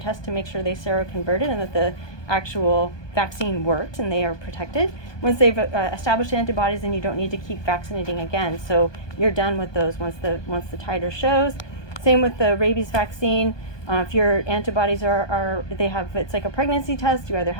test to make sure they seroconverted and that the actual vaccine worked and they are protected. Once they've established antibodies, then you don't need to keep vaccinating again. So you're done with those once the titer shows. Same with the rabies vaccine. If your antibodies it's like a pregnancy test. You either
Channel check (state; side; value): late; right; 1.2 ms